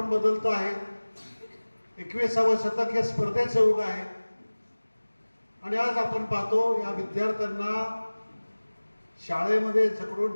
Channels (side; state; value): both; inverted; correlation -1.00